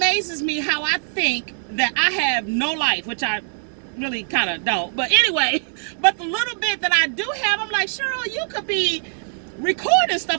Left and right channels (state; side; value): silent; left; digital silence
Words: me how I think that I have no life, which I really kind of don't. But anyway, but the little bit that I do have, I'm like, Cheryl, you could be recording